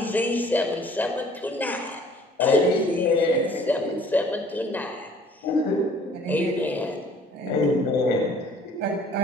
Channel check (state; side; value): normal; both; correlation 0.55